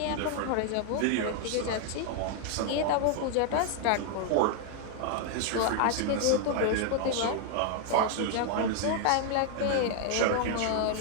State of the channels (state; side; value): different; both; correlation 0.00